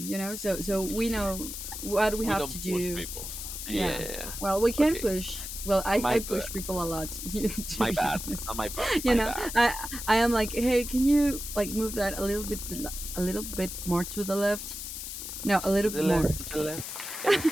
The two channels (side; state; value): left; noise; hiss, 7 dB below the sound